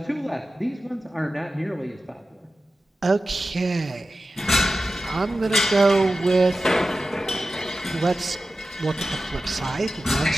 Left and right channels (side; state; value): both; normal; correlation 0.94